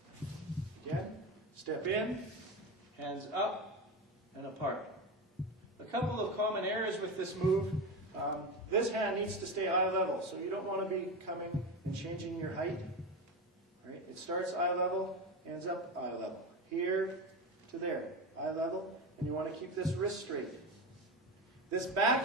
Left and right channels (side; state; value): both; normal; correlation 0.21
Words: Again, step in, hands up and apart. A couple of common errors with this move. This hand needs to stay eye level, so you don't want to be coming and changing your height. All right? It starts eye level, ends up eye level. Here to there, eye level, and you want to keep this wrist straight. This